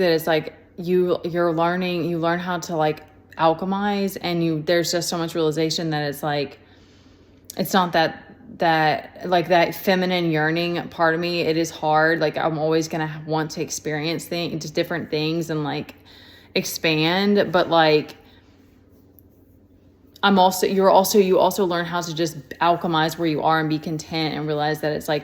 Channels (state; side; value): identical; both; correlation 1.00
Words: is like, you learn how to like alchemize, and there's just so much realization that it's like, it's not that like that feminine yearning part of me, it is hard. Like I'm always gonna want to experience just different things and like expand, but like you also learn how to just alchemize where you are and be content and realize that it's